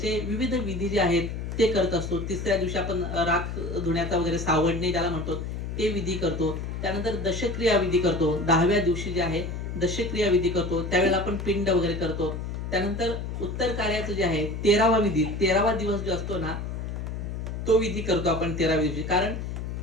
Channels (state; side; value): noise; left; hum, 5 dB below the sound